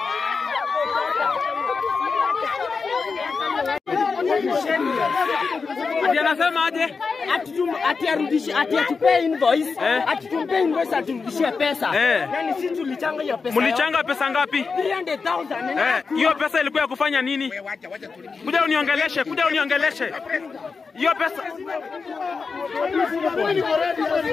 Ati anasema aje? Ati arudishe, ati atupe invoice, ati tumpe invoice aturudishie pesa. Yani sisi tulichanga hiyo pesa. Mlichanga pesa ngapi? 300,000. Hiyo pesa ilikuwa ya kufanya nini? Kuja uniongeleshe, kuja uniongeleshe. Hiyo pesa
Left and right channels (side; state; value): right; quieter; 4.8 dB